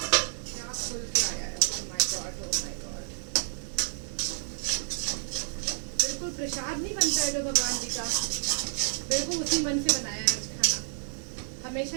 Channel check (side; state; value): left; silent; digital silence